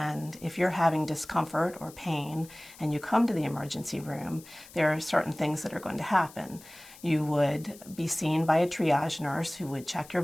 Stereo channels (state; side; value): noise; left; hiss, 20 dB below the sound